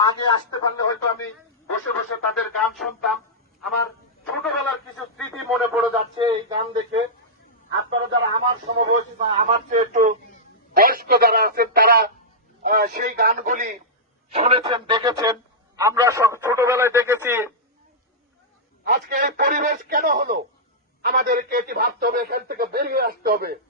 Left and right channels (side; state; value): both; normal; correlation -0.11